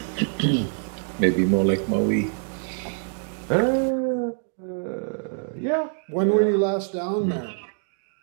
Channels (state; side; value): silent; left; 62 dB below the other